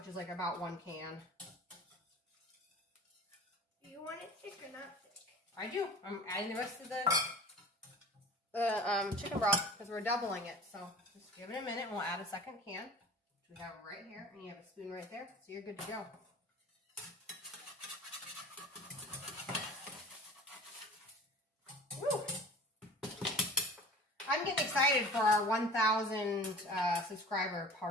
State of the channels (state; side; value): normal; both; correlation 0.40